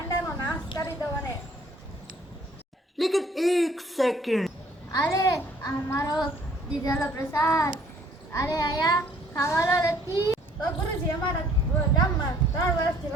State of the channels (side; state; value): both; normal; correlation 0.59